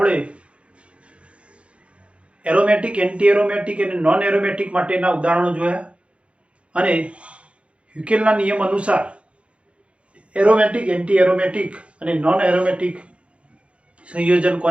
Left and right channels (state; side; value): late; left; 0.060 ms